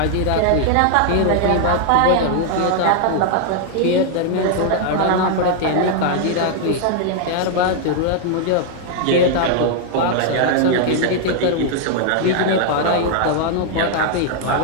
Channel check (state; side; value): different; both; correlation 0.00